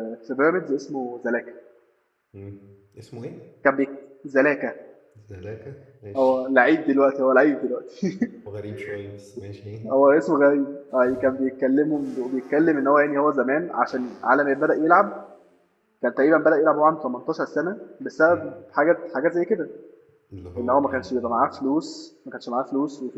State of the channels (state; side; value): identical; both; correlation 1.00